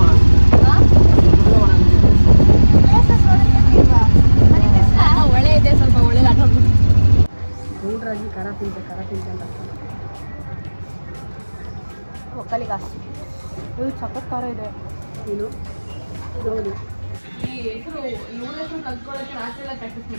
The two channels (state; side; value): inverted; both; correlation -1.00